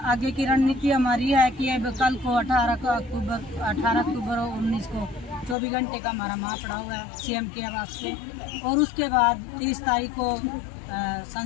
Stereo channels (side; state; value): right; drops out; at 5.6 s